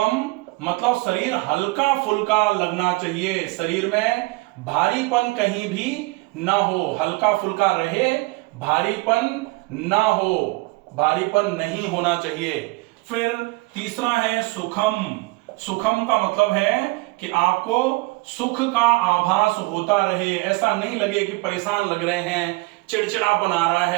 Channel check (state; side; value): quieter; left; 23.9 dB